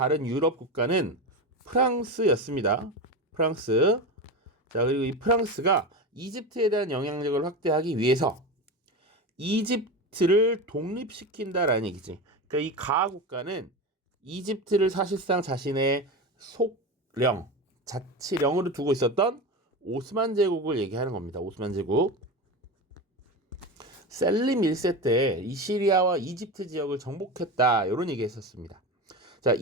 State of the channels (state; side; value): normal; both; correlation 0.23